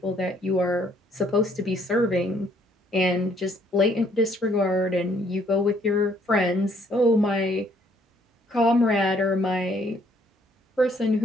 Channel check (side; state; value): both; normal; correlation 0.65